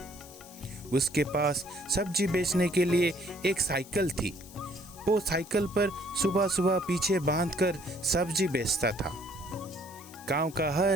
उसके पास सब्जी बेचने के लिए एक साइकिल थी। वो साइकिल पर सुबह सुबह पीछे बांधकर सब्जी बेचता था। गांव का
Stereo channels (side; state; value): left; noise; hiss, 20 dB below the sound